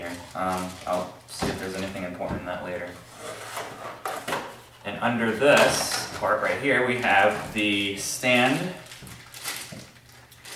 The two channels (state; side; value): identical; both; correlation 1.00